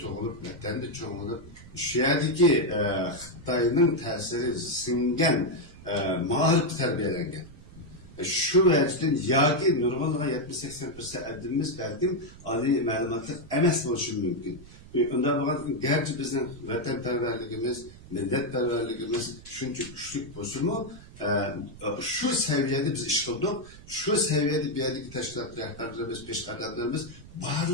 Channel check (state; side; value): noise; right; rumble, 19 dB below the sound